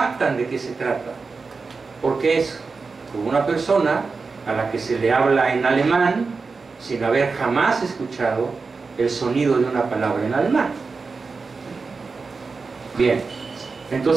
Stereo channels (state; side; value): quieter; left; 4.5 dB